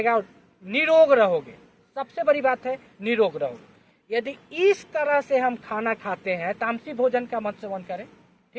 और निरोग रहोगे। सबसे बड़ी बात है निरोग रहोगे। यदि इस तरह से हम खाना खाते हैं, तामसी भोजन का मत सेवन करें,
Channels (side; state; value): both; identical; correlation 1.00